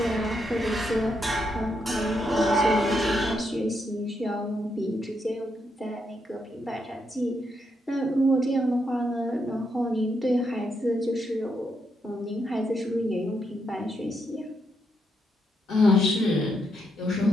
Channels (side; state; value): both; normal; correlation 0.79